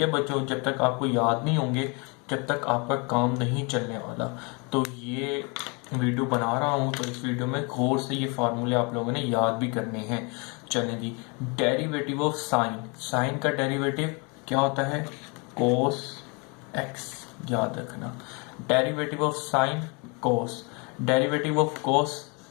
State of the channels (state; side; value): quieter; right; 31.6 dB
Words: बच्चों, जब तक आपको याद नहीं होंगे जब तक आपका काम नहीं चलने वाला। तो ये वीडियो बना रहा हूँ तो इस वीडियो में गौर से ये फार्मूले आप लोगों ने याद भी करने हैं। चलें जी, डेरिवेटिव ऑफ साइन, साइन का डेरिवेटिव क्या होता है? कोस एक्स, याद रखना। Derivative of sine cos, derivative of cos